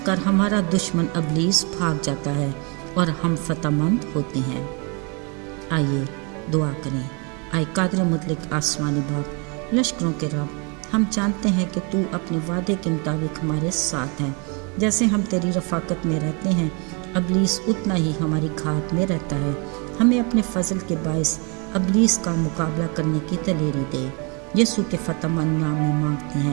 کر ہمارا دشمن ابلیس بھاگ جاتا ہے اور ہم فتح مند ہوتے ہیں۔ آئیے دعا کریں۔ آئے قادر مطلق آسمانی باپ، لشکروں کے رب، ہم جانتے ہیں کہ تو اپنے وعدے کے مطابق ہمارے ساتھ ہیں۔ جیسے ہم تیری رفاقت میں رہتے ہیں، ابلیس اتنا ہی ہماری گھات میں رہتا ہے۔ ہمیں اپنے فضل کے باعث ابلیس کا مقابلہ کرنے کی دلیری دے۔ یسوع کے فتح مند نام میں مانگتے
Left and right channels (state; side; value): quieter; left; 33.1 dB